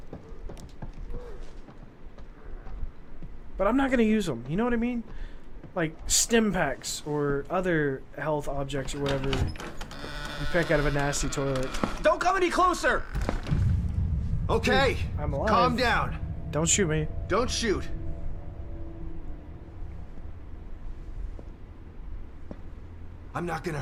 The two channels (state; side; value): identical; both; correlation 1.00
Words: but I'm not gonna use them. You know what I mean? Like stim packs or other health objects or whatever you pick out of a nasty toilet. Don't come any closer! Okay, I'm alive. calm down. Don't shoot me. Don't shoot. I'm not gonna